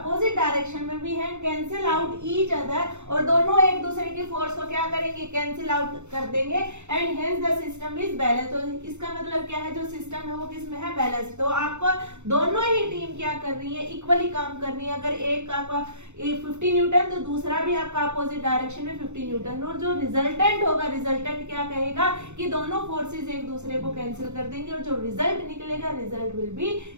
डायरेक्शन में भी है, कैंसिल आउट ईच अदर, और दोनों एक दूसरे की फोर्स को क्या करेंगे, कैंसिल आउट कर देंगे। And hence the system is balance. तो इसका मतलब क्या है, जो सिस्टम है वो किसमें है, बैलेंस। तो आपको दोनों ही टीम क्या कर रही है, इक्वली काम कर रही है। अगर एक आपका 50 न्यूटन तो दूसरा भी आपका अपोजिट डायरेक्शन में 50 न्यूटन, और जो रिजल्टेंट होगा, रिजल्टेंट क्या कहेगा कि दोनों फोर्सेस एक दूसरे को कैंसिल कर देंगे, और जो रिजल्ट निकलेगा result will be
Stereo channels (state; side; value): late; left; 0.83 ms